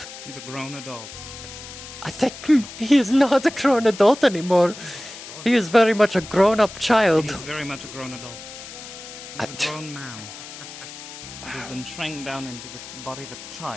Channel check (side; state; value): left; noise; hiss, 13 dB below the sound